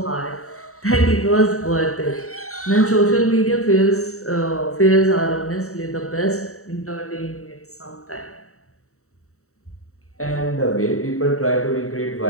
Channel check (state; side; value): late; right; 0.64 ms